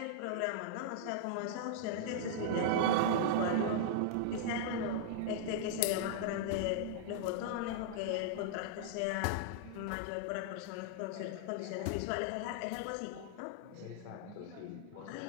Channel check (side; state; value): both; different; correlation -0.01